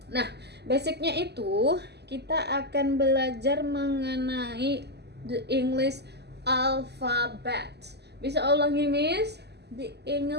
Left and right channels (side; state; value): left; late; 0.49 ms